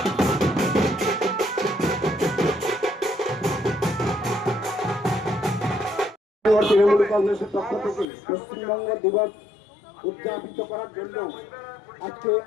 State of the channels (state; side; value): drops out; right; at 8.1 s